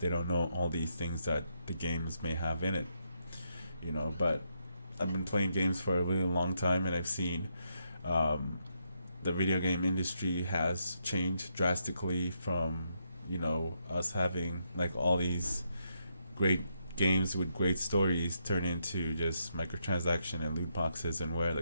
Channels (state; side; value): inverted; both; correlation -0.79